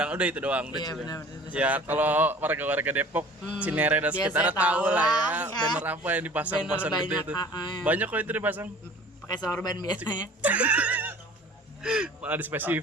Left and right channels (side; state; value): both; normal; correlation 0.46